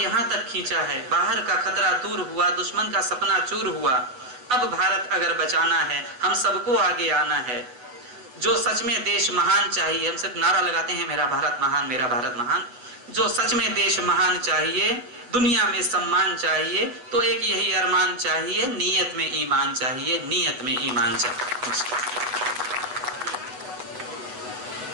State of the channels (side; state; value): left; late; 8.1 ms